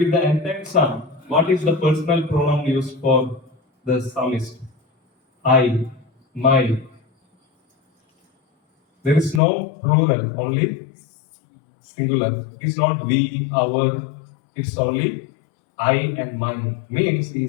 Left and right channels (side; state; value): right; drops out; at 9.4 s